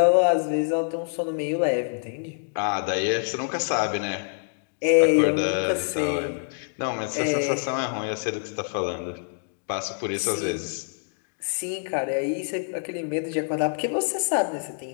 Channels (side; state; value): right; silent; digital silence